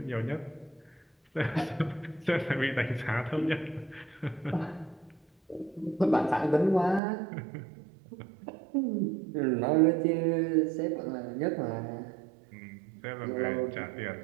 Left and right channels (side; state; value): left; drops out; at 7.0 s